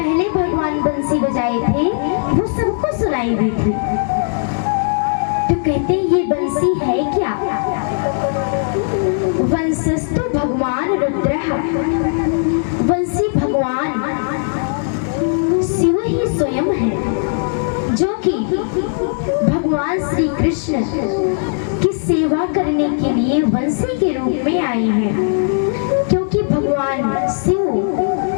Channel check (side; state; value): right; silent; digital silence